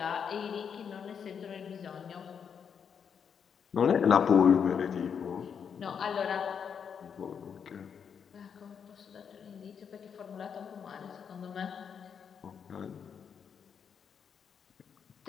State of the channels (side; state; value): right; quieter; 7.1 dB